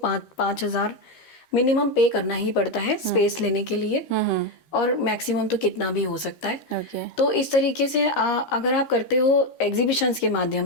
मिनिमम पे करना ही पड़ता है स्पेस लेने के लिए, और मैक्सिमम तो कितना भी हो सकता है। तो इस तरीके से अगर आप करते हो एग्जीबिशंस के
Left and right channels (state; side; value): late; right; 13 ms